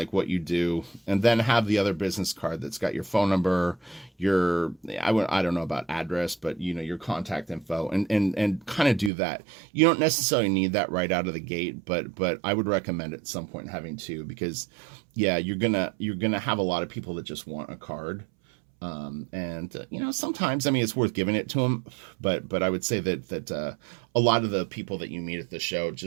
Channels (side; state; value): left; drops out; at 9.1 s